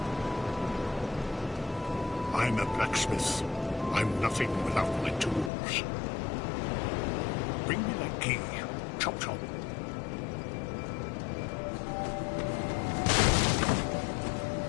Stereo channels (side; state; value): right; drops out; at 5.5 s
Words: I'm a blacksmith. I'm nothing without my tools. Bring me that key. Chop chop.